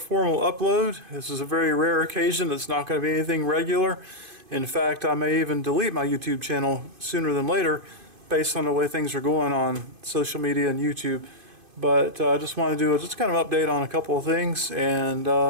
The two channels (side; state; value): left; late; 2.5 ms